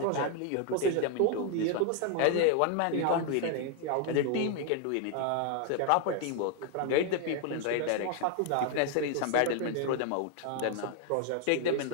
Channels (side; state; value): both; different; correlation 0.00